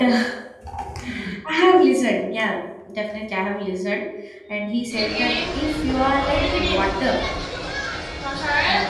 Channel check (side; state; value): both; identical; correlation 1.00